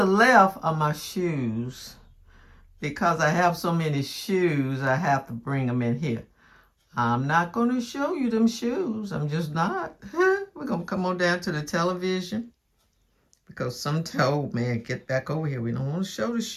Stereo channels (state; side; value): identical; both; correlation 1.00